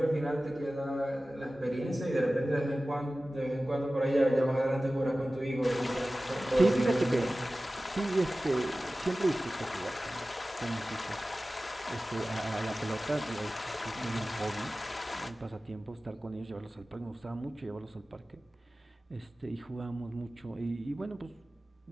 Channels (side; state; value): both; normal; correlation 0.96